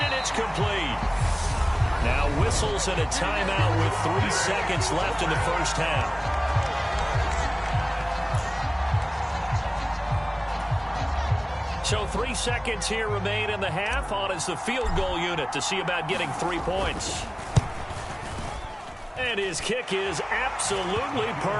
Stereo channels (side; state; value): both; identical; correlation 1.00